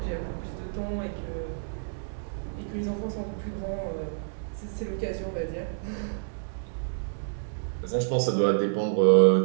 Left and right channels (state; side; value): silent; left; digital silence